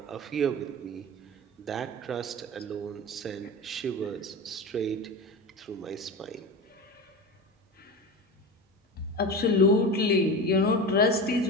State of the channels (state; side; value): normal; both; correlation 0.26